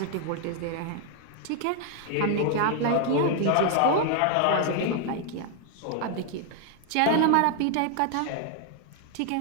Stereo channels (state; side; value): different; both; correlation 0.00